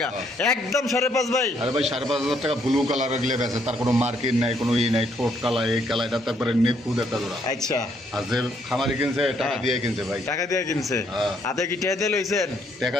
একদম 5,500 ভাই আরে ভাই 5,500 টাকা ব্লু কালার গেলে বেছে তার কোনো মার্কিং নাই কোনো ই নাই ঠোঁট কালা এই কালা এটা তারপরে নিখুঁত একটা জোড়া আচ্ছা আর যে খামারি কিনছে টাকা দিয়ে কিনছে ভাই টাকা দিয়ে কিনছে হ্যাঁ। হাতে কি টাকা দিয়ে লইছেন টাকা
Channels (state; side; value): normal; both; correlation 0.70